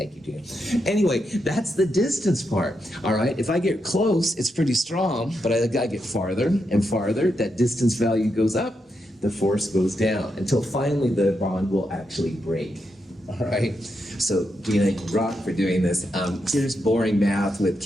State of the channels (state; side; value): normal; both; correlation 0.84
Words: you, Gina. Anyway, that's the distance part, all right? If I get close, it's pretty strong, but I gotta get farther and farther. That distance value goes up, the force goes down, until finally the bond will actually break, all right? So, Gina, you rock for doing this. Here's boring math with